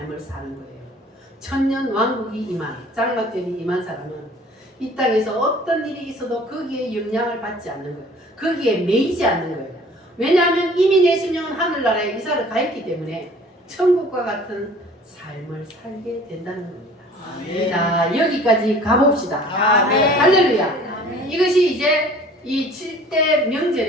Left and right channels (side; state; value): both; normal; correlation 0.49